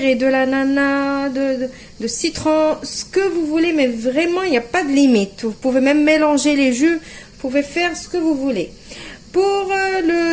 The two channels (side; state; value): both; identical; correlation 1.00